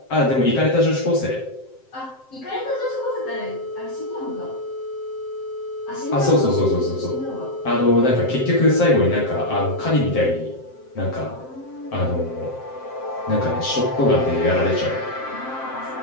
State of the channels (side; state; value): right; late; 7.6 ms